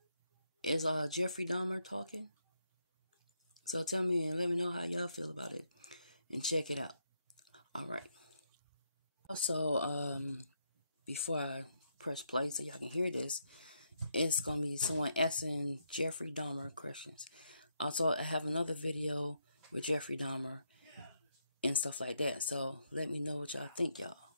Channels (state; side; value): inverted; both; correlation -0.78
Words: Is Jeffrey Dahmer talking. So tell me and let me know how y'all feel about it. And check it out. Alright. Also, before I press play so y'all can hear this, it's going to be someone asking Jeffrey Dahmer questions. Also, I have another video with Jeffrey Dahmer and stuff like that. So let me know what y'all think, y'all.